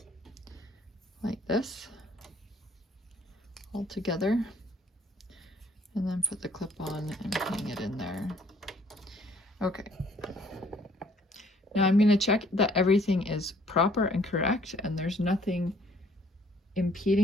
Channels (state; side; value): normal; both; correlation 0.61